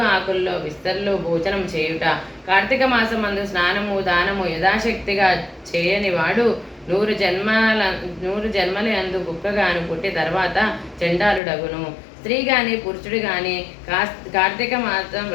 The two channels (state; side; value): drops out; right; at 11.4 s